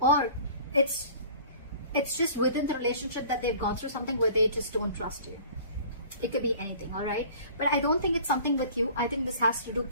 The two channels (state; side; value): inverted; both; correlation -0.47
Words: it's just within the relationship that they've gone through something where they just don't trust you. It could be anything, all right? But I don't think it's something with you. I think this has to do